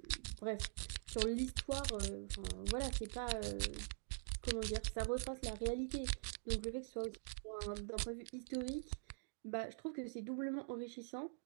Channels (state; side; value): silent; left; digital silence